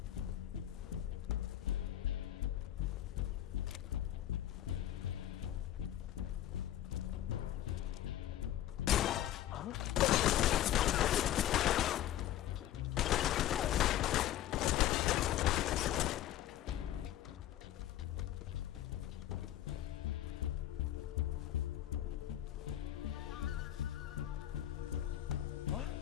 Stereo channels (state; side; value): quieter; right; 12.6 dB